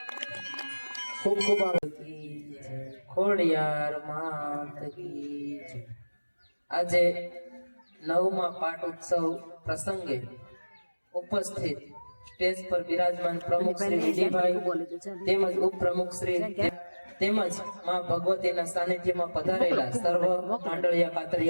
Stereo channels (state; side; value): inverted; both; correlation -1.00